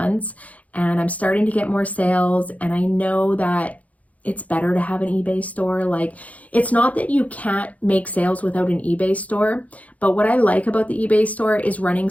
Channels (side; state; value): right; late; 0.070 ms